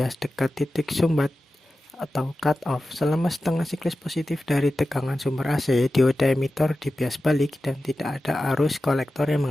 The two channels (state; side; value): normal; both; correlation 0.94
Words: dekat titik sumbat atau cut off. Selama setengah siklus positif dari tegangan sumber AC, dioda emitor dibias balik dan tidak ada arus kolektor yang